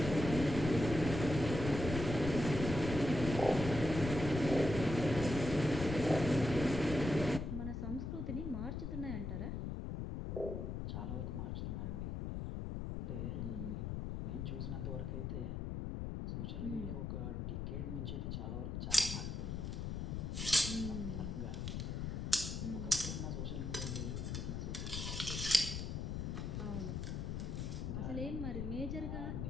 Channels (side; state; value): left; noise; rumble, 3 dB below the sound